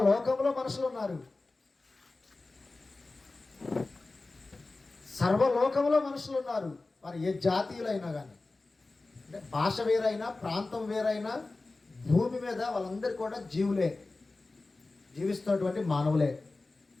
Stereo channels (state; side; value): quieter; right; 3.4 dB